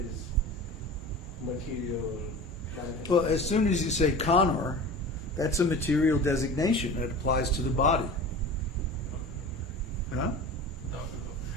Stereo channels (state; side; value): normal; both; correlation 0.36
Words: material manifestation? Well, as soon as you say Connor, that's a material designation that applies to the body. Huh? No.